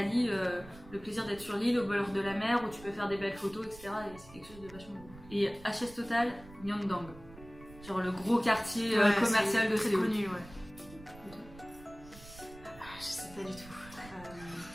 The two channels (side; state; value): right; noise; rumble, 19 dB below the sound